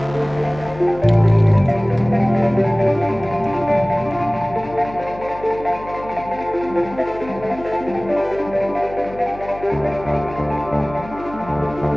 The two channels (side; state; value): left; noise; hum, 16 dB below the sound